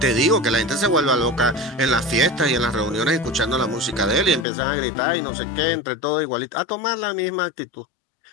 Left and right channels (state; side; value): drops out; right; at 4.5 s